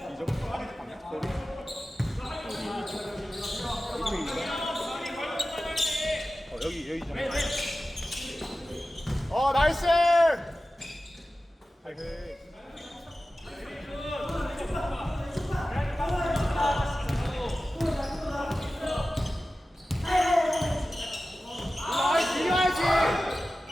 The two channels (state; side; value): normal; both; correlation 0.95